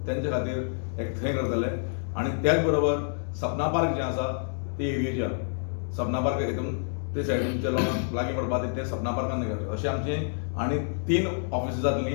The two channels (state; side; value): silent; right; digital silence